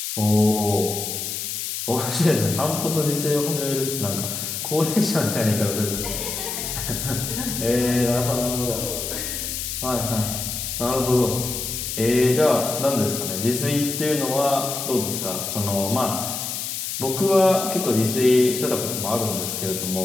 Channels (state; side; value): noise; left; hiss, 4 dB below the sound